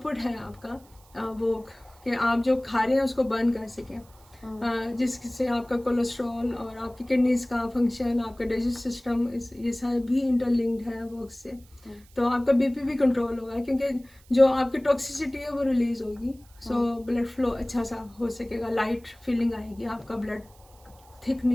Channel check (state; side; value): noise; right; hiss, 28 dB below the sound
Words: है आपका वॉक, कि आप जो खा रहे हैं उसको बर्न कर सकें, जिससे आपका कोलेस्ट्रॉल और आपकी किडनीज का फंक्शन, आपका डाइजेस्ट सिस्टम, ये सारे भी इंटरलिंक्ड है वॉक से। तो आपका बीपी भी कंट्रोल होगा, क्योंकि जो आपकी टॉक्सिसिटी है वो रिलीज होगी। सो ब्लड फ्लो अच्छा सा हो सकेगा, लाइट फीलिंग आएगी, आपका ब्लड थिक